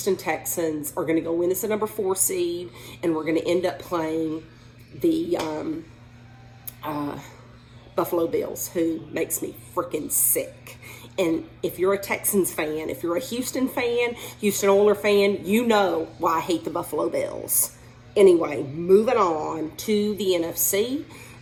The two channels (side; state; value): both; identical; correlation 1.00